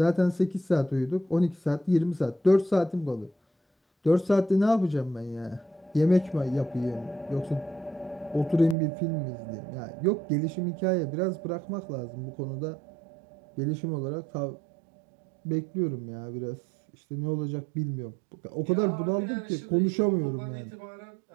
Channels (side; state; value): left; drops out; at 8.8 s